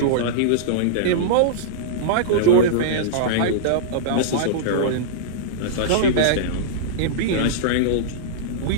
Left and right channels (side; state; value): both; different; correlation -0.03